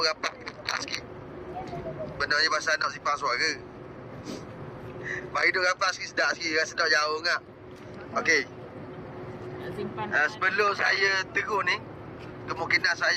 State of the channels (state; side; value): identical; both; correlation 1.00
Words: rapat sikit. Benarnya bahasa nak simpan suara. Mari duduk rapat sikit, sedap sikit, rasa sedap jauh ngak. Okey. Sebelum saya terus ni, kemungkinan